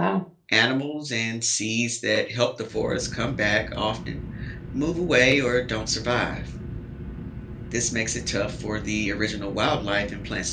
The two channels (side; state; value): both; identical; correlation 1.00